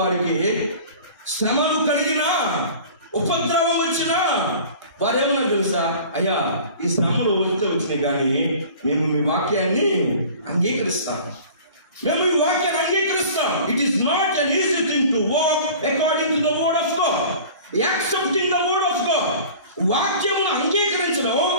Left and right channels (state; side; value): inverted; both; correlation -0.43